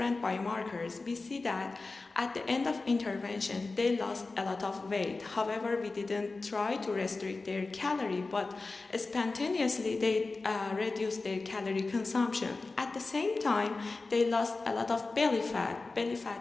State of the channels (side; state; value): right; quieter; 3.6 dB